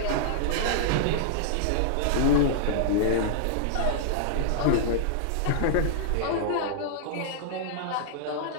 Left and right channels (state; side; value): different; both; correlation -0.01